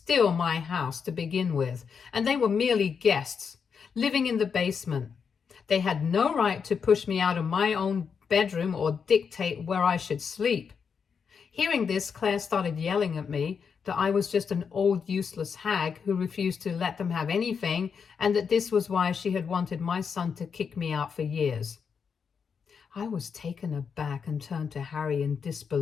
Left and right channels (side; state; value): right; quieter; 6.3 dB